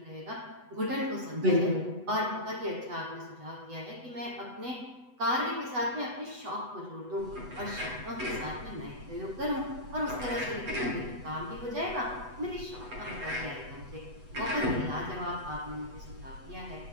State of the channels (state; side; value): late; left; 8.0 ms